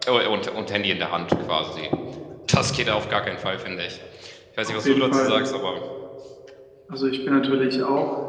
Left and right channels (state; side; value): identical; both; correlation 1.00